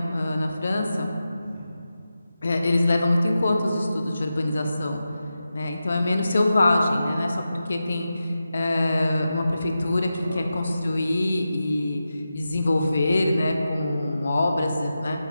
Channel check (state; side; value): inverted; both; correlation -0.91